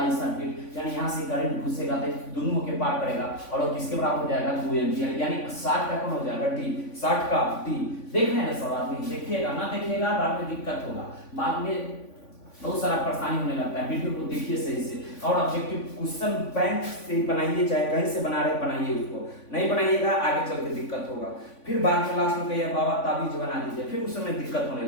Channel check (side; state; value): right; late; 3.5 ms